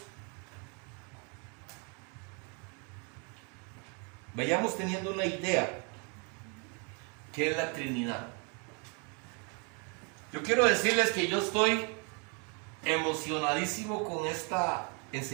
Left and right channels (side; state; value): left; quieter; 35.1 dB